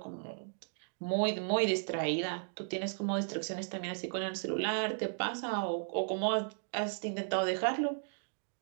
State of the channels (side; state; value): left; silent; digital silence